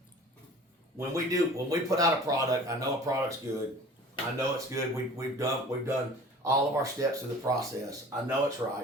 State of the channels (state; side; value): normal; both; correlation 0.44